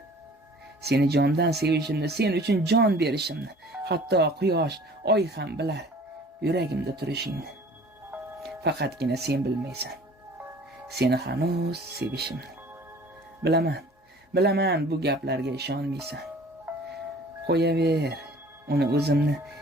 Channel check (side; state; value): both; normal; correlation 0.49